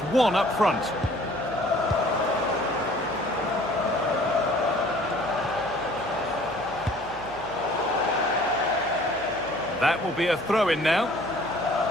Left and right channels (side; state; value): right; noise; hum, 20 dB below the sound